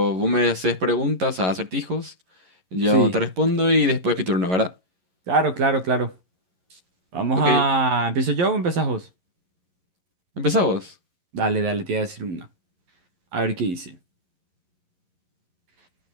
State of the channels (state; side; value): late; left; 11 ms